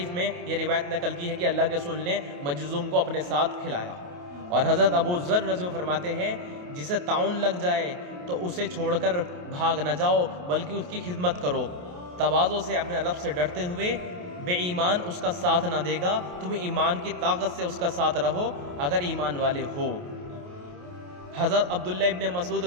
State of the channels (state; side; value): late; left; 28 ms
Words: میں یہ روایت نقل کی ہے کہ اللہ کے رسول نے مجذوم کو اپنے ساتھ کھلایا۔ اور حضرت ابو ذر رضی اللہ عنہ فرماتے ہیں جسے طاعون لگ جائے تو اسے چھوڑ کر بھاگ نہ جاؤ بلکہ اس کی خدمت کرو، تواضع سے اپنے رب سے ڈرتے ہوئے۔ بے ایمان اس کا ساتھ نہ دے گا، تم ایمان کی طاقت سے اس کا ساتھ رہو اگر ایمان والے ہو۔ حضرت عبداللہ ابن مسعود